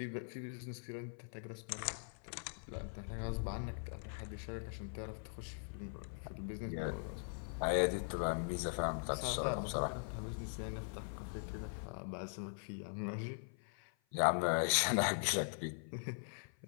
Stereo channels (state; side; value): silent; right; 50 dB below the other